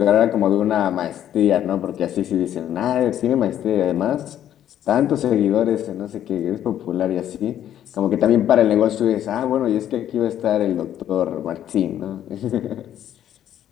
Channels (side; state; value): right; quieter; 11.0 dB